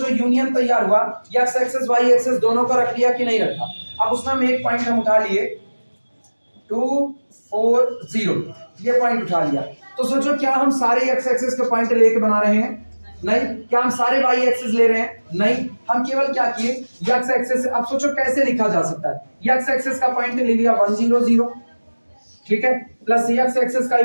यूनियन तैयार हुआ, x एक्सिस y एक्सिस दोनों को रख लिया कि नहीं रखा? अब उसमें हम एक पॉइंट हम उठा लिए 2 4 0, ये पॉइंट उठा लिया। तो सोचो क्या हम सारे x एक्सिस के पॉइंट लेके बना रहे हैं? नहीं। क्या हम सारे y एक्सिस ले रहे हैं? नहीं। हम केवल क्या किए, x एक्सिस। अब सोचो कैसे लिखा जा सकता है, x एक्सिस का पॉइंट ले लिया 1 0 0, ठीक है, प्लस x एक्सिस का ही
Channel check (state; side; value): inverted; both; correlation -1.00